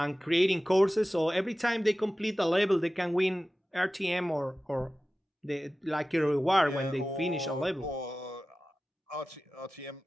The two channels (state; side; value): normal; both; correlation 0.95